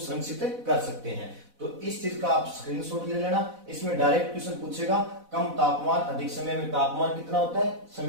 कर सकते हैं। तो इस चीज का आप स्क्रीनशॉट ले लेना। इसमें डायरेक्ट क्वेश्चन पूछेगा कम तापमान अधिक समय में तापमान कितना होता है,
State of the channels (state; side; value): late; left; 4.0 ms